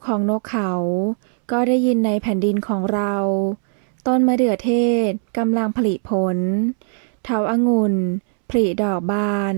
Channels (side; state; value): left; silent; 66 dB below the other